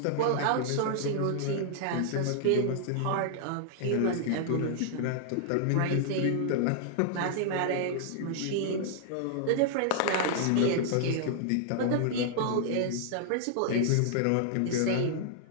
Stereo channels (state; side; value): different; both; correlation -0.01